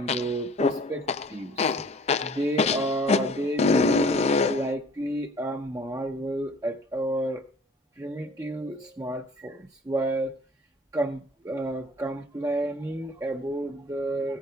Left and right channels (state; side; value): normal; both; correlation 0.50